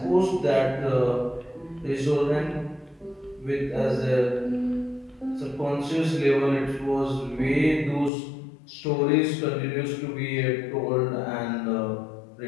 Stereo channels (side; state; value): right; drops out; at 8.1 s